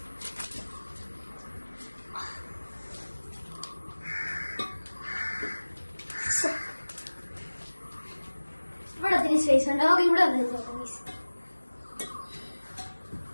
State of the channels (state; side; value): inverted; both; correlation -1.00